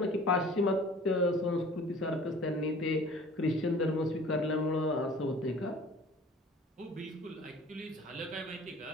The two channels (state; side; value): normal; both; correlation 0.47